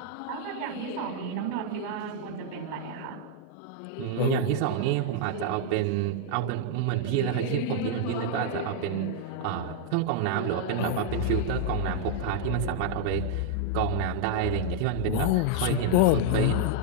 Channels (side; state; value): both; different; correlation -0.01